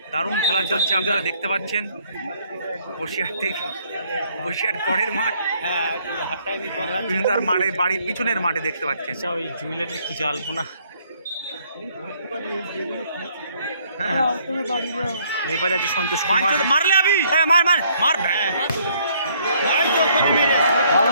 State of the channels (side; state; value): both; inverted; correlation -0.65